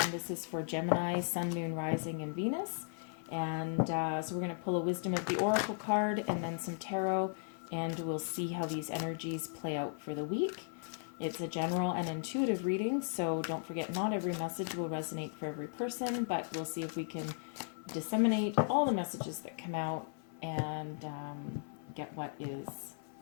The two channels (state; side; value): silent; right; 53 dB below the other